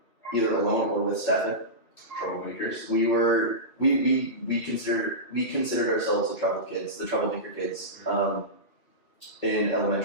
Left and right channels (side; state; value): right; late; 2.7 ms